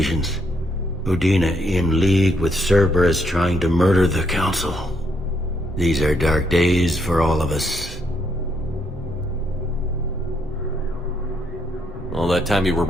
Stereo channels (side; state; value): both; normal; correlation 0.75